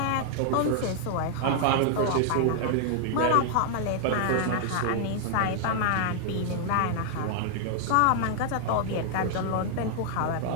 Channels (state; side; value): different; both; correlation 0.00